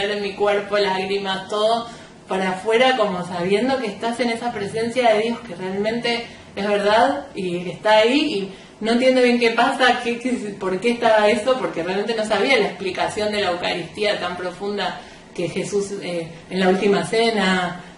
en mi cuerpo lágrimas, todo para afuera, como sabiendo que estás en esa presencia de Dios que realmente es verdad y que está ahí, y no entiendo bien qué pasa, por qué estaba eso, porque realmente no sabía la explicación de la Eucaristía tan profunda que Jesús en la última cena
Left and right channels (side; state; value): both; identical; correlation 1.00